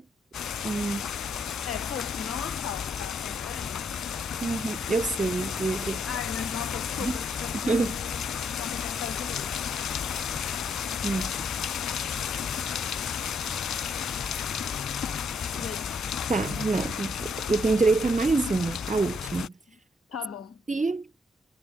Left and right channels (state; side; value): normal; both; correlation 0.72